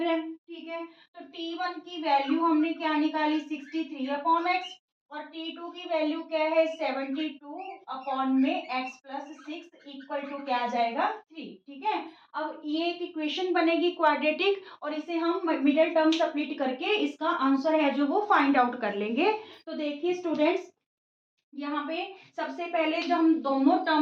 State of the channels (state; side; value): identical; both; correlation 1.00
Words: रहे हैं। ठीक है, तो t1 की वैल्यू हमने क्या निकाली, 63 अपॉन एक्स, और t2 की वैल्यू क्या है, 72 अपॉन में x प्लस 6 इक्वल टू क्या आ जाएगा, 3। ठीक है, अब ये एक इक्वेशन बनेगी क्वाड्रेटिक और इसे हम मिडिल टर्म सब्स्टिट्यूट करके इसका आंसर है जो वो फाइंड आउट कर लेंगे। तो देखिए स्टूडेंट्स, यहाँ पे सबसे पहले जो हम दोनों